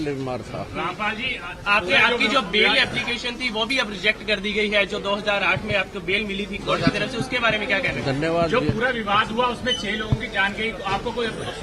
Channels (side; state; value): both; identical; correlation 1.00